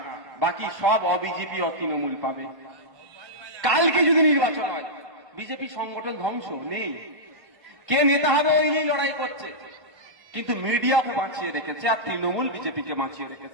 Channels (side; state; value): left; late; 1.4 ms